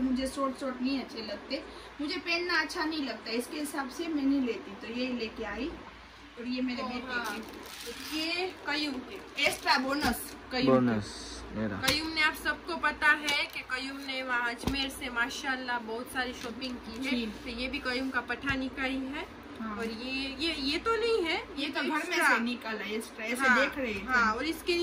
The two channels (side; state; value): both; identical; correlation 1.00